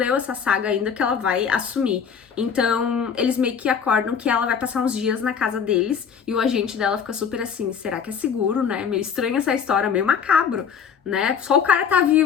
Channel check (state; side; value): quieter; right; 7.0 dB